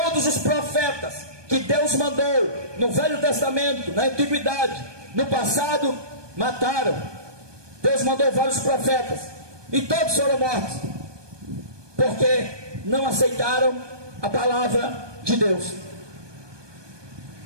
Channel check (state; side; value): late; left; 1.2 ms